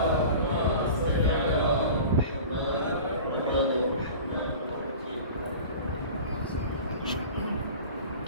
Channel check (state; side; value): inverted; both; correlation -0.38